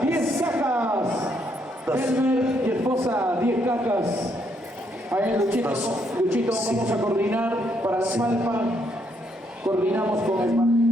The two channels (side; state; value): both; normal; correlation 0.73